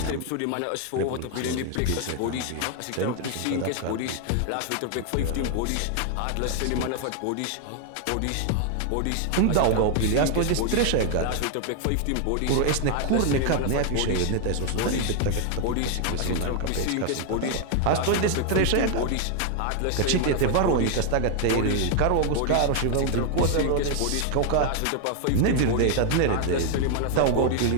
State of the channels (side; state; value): both; different; correlation 0.00